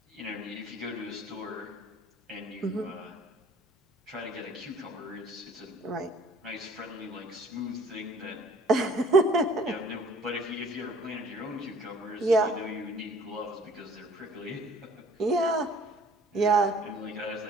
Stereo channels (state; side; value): normal; both; correlation 0.55